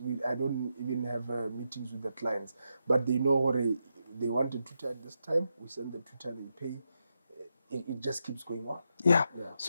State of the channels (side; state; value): both; inverted; correlation -0.85